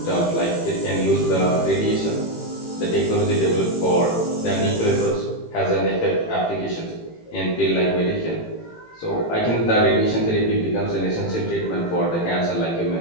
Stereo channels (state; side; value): late; right; 18 ms